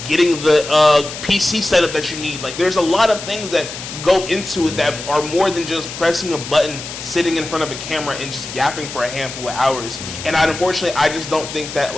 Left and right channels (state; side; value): noise; left; hiss, 10 dB below the sound